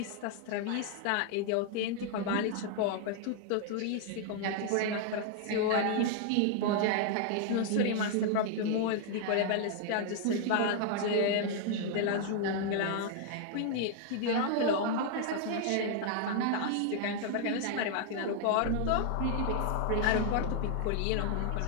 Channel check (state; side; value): different; both; correlation 0.00